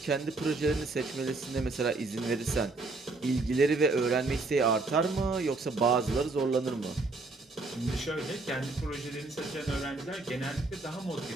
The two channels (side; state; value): left; quieter; 3.4 dB